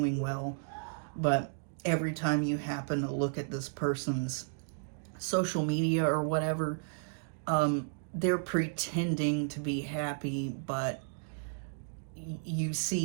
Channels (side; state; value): left; silent; digital silence